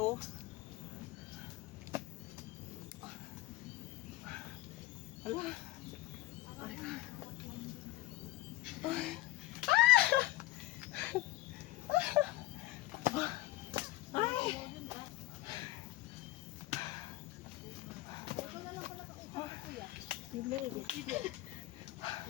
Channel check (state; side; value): quieter; right; 17.2 dB